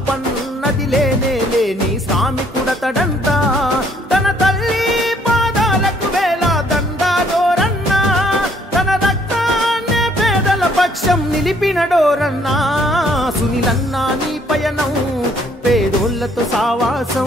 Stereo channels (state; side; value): normal; both; correlation 0.64